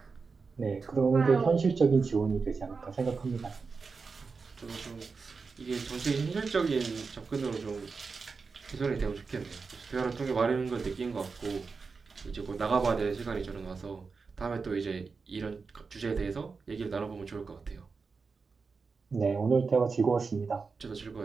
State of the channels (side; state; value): left; quieter; 4.7 dB